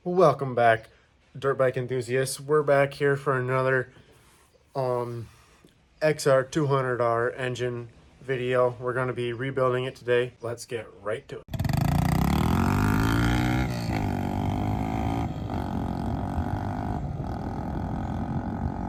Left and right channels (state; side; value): identical; both; correlation 1.00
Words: Welcome back, dirt bike enthusiasts. We're back here for another XR200R engine video. We're going to be rebuilding it today. Let's get right to it.